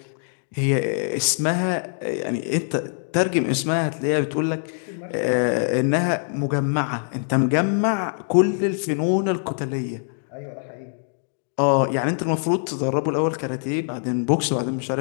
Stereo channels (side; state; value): right; silent; digital silence